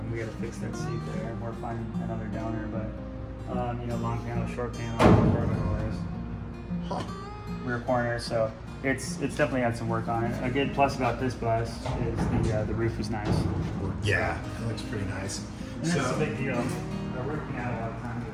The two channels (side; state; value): both; identical; correlation 1.00